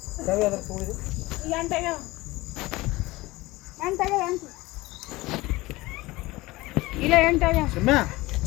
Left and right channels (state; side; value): quieter; right; 20.3 dB